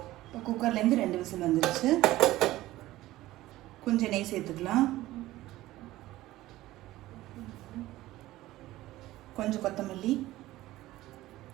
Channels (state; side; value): quieter; left; 16.4 dB